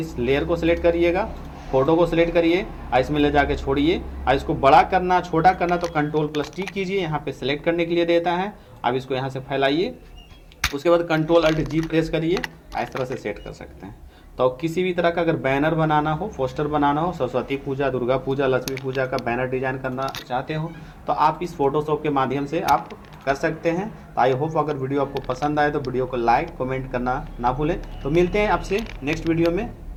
लेयर को सिलेक्ट करिएगा, फ़ोटो को सिलेक्ट करिए और इसमें ले जाके छोड़िए। और इसको बड़ा करना छोटा करना तो Ctrl+T कीजिए, यहाँ पे सिलेक्ट करने के लिए देता है। अब इसको यहाँ से फैलाइए, उसके बाद Ctrl+Alt G प्रेस करिए, इस तरह से सेट कर सकते हैं। तो किसी भी तरह का अगर बैनर बनाना हो, पोस्टर बनाना हो, सरस्वती पूजा, दुर्गा पूजा, लक्ष्मी पूजा का बैनर डिजाइन करना चाहते हो तो आप इस फोटोशॉप के माध्यम से आप कर सकते हैं। तो आई होप अगर वीडियो आपको पसंद आए तो वीडियो को लाइक कमेंट करना ना भूलें। तो मिलते हैं आपसे नेक्स्ट वीडियो में,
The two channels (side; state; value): both; identical; correlation 1.00